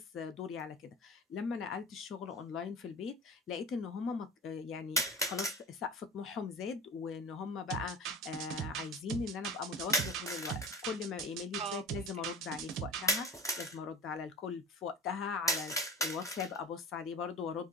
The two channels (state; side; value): normal; both; correlation 0.36